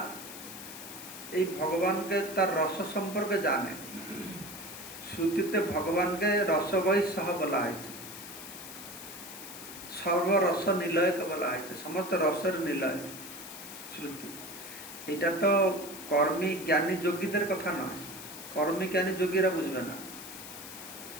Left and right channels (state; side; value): noise; left; hiss, 12 dB below the sound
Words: এই ভগবানকে তার রস সম্পর্কে জানে, শ্রুতিতে ভগবানকে রসবৈ সহ বলা হয়েছে, সর্বরস নিলয়কে বলা হয়েছে, সমস্ত রসের নিলয় শ্রুতি। এটা তো কর্মী জ্ঞানী যোগীদের কথা নয়, কর্মী জ্ঞানী যোগীরা বুঝবে না,